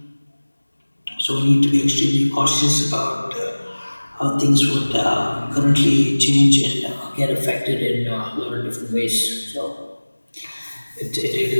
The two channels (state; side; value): inverted; both; correlation -1.00